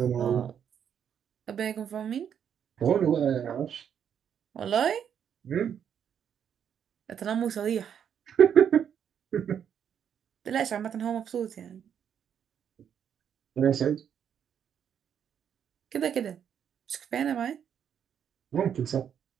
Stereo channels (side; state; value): left; quieter; 8.4 dB